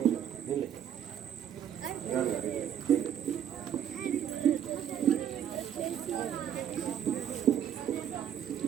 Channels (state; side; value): quieter; left; 9.5 dB